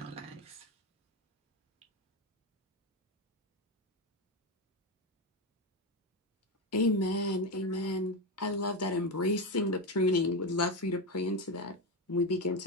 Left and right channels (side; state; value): both; normal; correlation 0.13